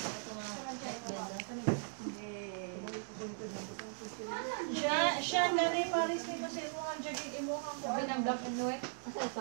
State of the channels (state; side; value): silent; left; digital silence